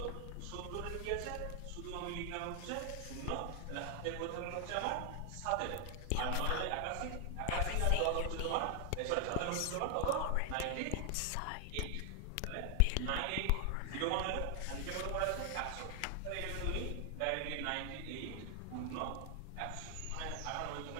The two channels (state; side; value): different; both; correlation 0.00